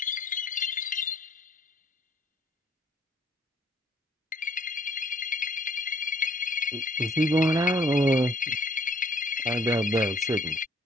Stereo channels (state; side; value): normal; both; correlation 0.62